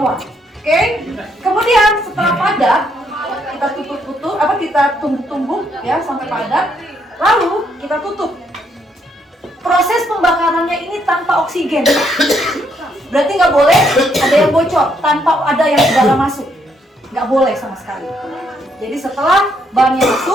Oke, kemudian setelah padat, kita kita tumbuk-tumbuk ya sampai padat, lalu kita tutup. Proses pembakarannya ini tanpa oksigen, berarti nggak boleh ada yang bocor, tanpa ada yang ke dalam masuk, nggak boleh sama sekali. Jadi setelah bahannya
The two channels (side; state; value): both; normal; correlation 0.73